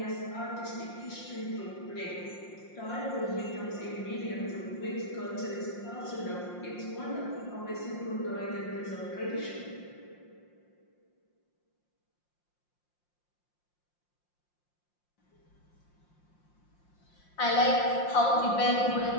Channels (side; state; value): right; late; 5.7 ms